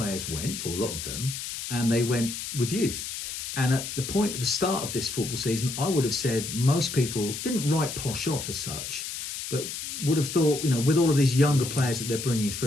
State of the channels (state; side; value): noise; left; hiss, 6 dB below the sound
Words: went, or a lot of them, and they went with youth. And at the point at the start of this football season, I would have said most people didn't write Posh off as such, but would have thought, with all of these younger players that they're bringing